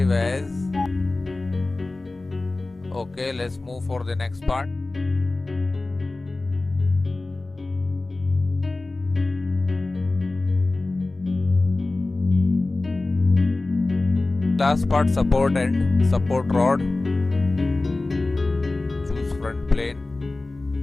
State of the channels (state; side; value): quieter; right; 3.1 dB